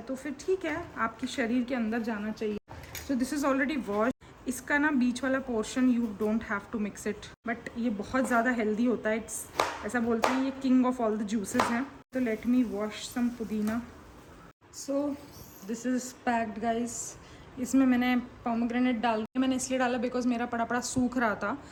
तो फिर ठीक है, आपके शरीर के अंदर जाना चाहिए। So this is already wash, इसका ना बीच वाला portion you don't have to mix it, but ये बहुत ज़्यादा हेल्दी होता है, इट्स ऐसा बोलते हैं ये king of all the juices हैं। तो लेट मी वॉश सम पुदीना। सो दिस इज़ पैक्ड गाइस। इसमें मैंने पोमेग्रेनेट डाल दिया, मैंने इसलिए डाला बिकॉज मेरा पड़ा सूख रहा था,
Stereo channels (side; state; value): both; identical; correlation 1.00